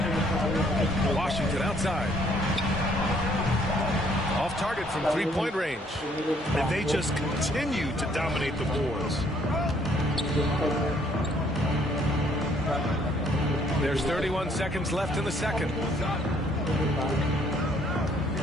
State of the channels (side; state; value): both; normal; correlation 0.64